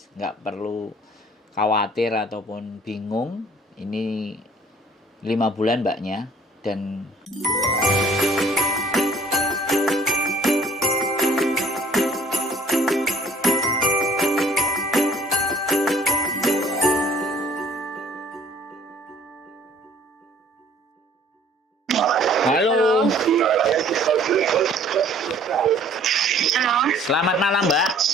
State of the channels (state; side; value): normal; both; correlation 0.56